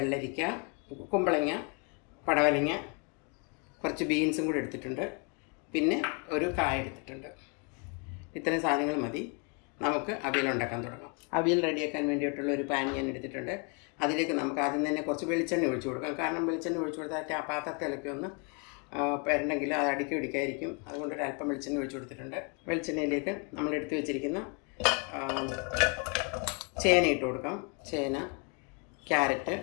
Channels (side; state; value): right; quieter; 35.3 dB